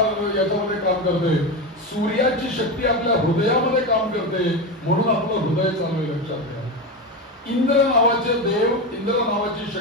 याच्यामध्ये काम करते, सूर्याची शक्ती आपल्या हृदयामध्ये काम करते, म्हणून आपलं हृदय चालू आहे. लक्षात घ्या, इंद्र नावाचे देव, इंद्र नावाची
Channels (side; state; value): both; normal; correlation 0.17